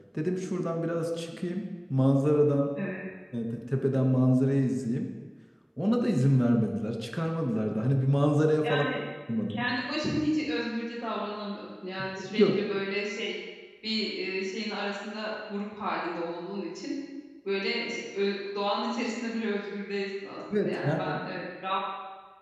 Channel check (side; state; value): both; identical; correlation 1.00